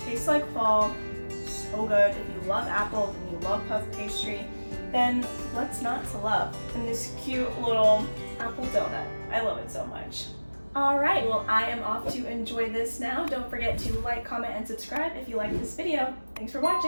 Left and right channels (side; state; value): both; inverted; correlation -1.00